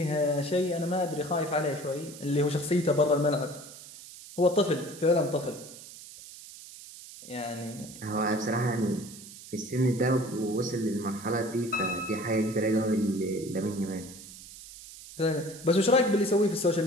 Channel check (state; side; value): noise; right; hiss, 16 dB below the sound